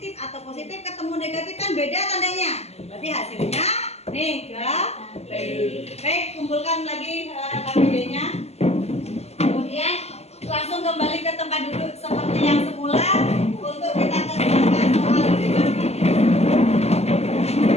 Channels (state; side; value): late; right; 0.30 ms